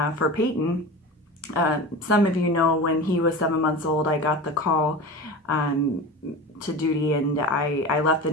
for Peyton, some of you know when he was 7 months old, I got the call to duty, and I left the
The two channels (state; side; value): normal; both; correlation 0.30